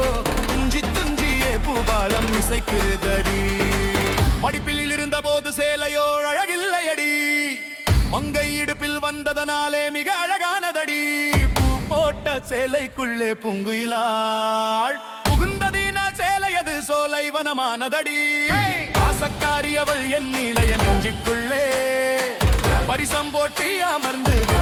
துஞ்சி துஞ்சியே பூபாலம் இசைக்குதடி. படிப்பில் இருந்த போது சேலையோ அழகில்லையடி. மங்கை இடுப்பில் வந்ததனாலே மிக அழகானதடி. பூ போட்ட சேலைக்குள்ளே பூங்குயிலாள் புகுந்ததின சேலையது சோலை வனமானதடி. ஆசக்காரி அவள் என் நீலைய நெஞ்சுக்குள்ளே பரிசம் போட்டி அமர்ந்து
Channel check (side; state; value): both; identical; correlation 1.00